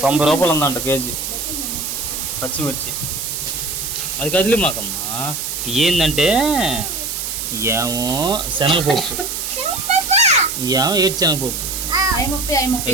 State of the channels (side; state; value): right; noise; hiss, 4 dB below the sound